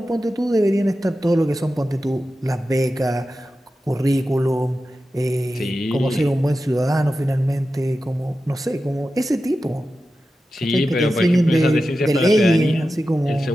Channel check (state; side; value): normal; both; correlation 0.92